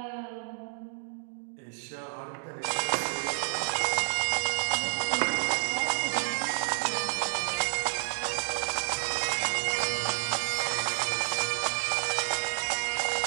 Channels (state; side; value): silent; left; digital silence